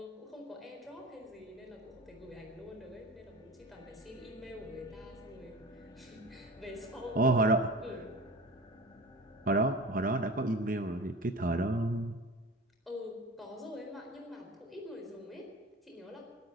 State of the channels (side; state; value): both; normal; correlation 0.35